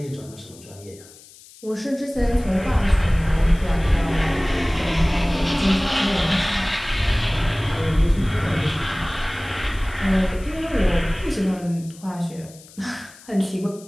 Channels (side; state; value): left; noise; hiss, 22 dB below the sound